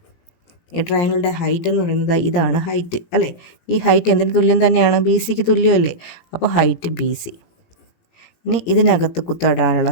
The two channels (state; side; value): late; right; 17 ms